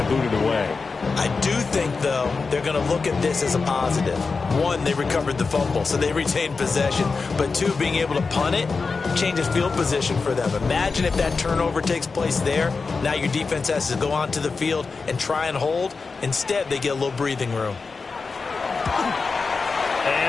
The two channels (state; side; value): quieter; right; 4.5 dB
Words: boot it away. I do think, though, they're going to look at this as a positive. 1, they recovered the fumble, so they retained possession. But 2, being able to punt it changes field position for them. Imagine if that turnover takes place there. Now your defense has to go onto the field and try and hold. Instead, they get a little breathing room.